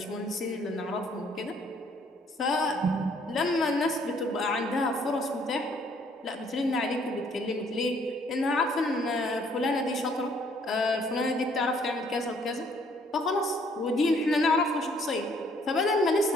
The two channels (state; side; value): normal; both; correlation 0.64